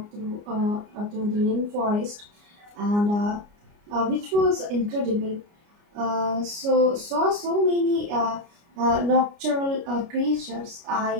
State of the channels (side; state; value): left; late; 29 ms